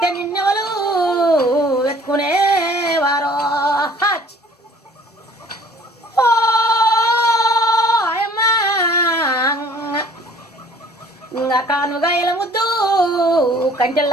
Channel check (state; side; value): normal; both; correlation 0.54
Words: నిన్నెవలు ఎత్తుకునేవారో ఇంకా కానుగాయల ముద్దు